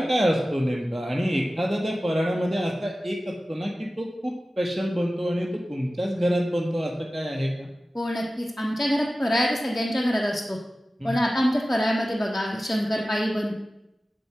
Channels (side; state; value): both; normal; correlation 0.96